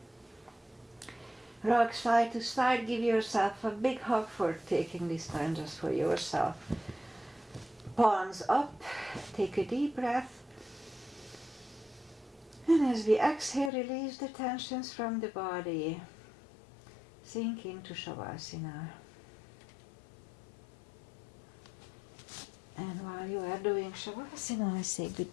Rock side to side, give yourself a big hug for taking this time just for yourself. Palms up, take a deep breath. And as we exhale, release the tensions from the body. Sink into Shavasana. And while you are doing Shavasana, I say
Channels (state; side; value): drops out; right; at 13.7 s